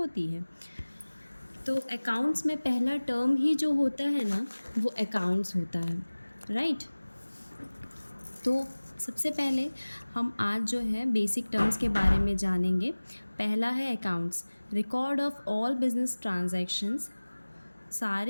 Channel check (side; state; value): both; inverted; correlation -1.00